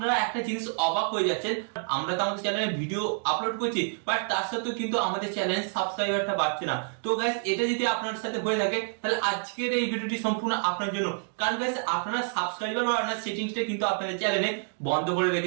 একটা জিনিস অবাক হয়ে যাচ্ছেন, আমরা তো আমাদের চ্যানেলে ভিডিও আপলোড করছি, বাট তার সাথেও কিন্তু আমাদের চ্যানেলের সাবস্ক্রাইবারটা বাড়ছে না। তো গাইস এটা যদি আপনার সাথে হয়ে থাকে তাহলে আজকের এই ভিডিওটি সম্পূর্ণ আপনার জন্য, কারণ গাইস আপনারা সাবস্ক্রাইবার বাড়ানোর সেটিংসটা কিন্তু আপনাদের চ্যানেলে বন্ধ করে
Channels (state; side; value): silent; left; 56 dB below the other